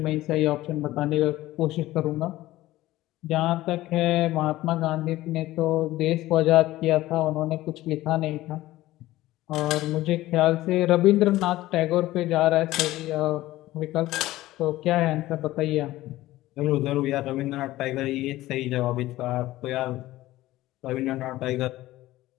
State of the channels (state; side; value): quieter; right; 16.5 dB